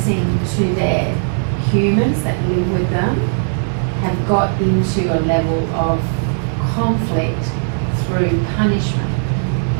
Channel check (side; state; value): left; silent; digital silence